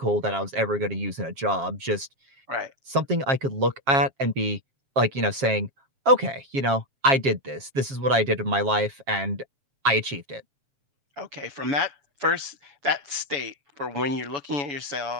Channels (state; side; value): late; left; 7.4 ms